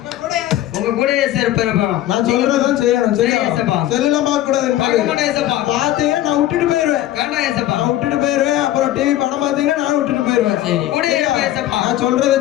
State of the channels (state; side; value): quieter; right; 13.6 dB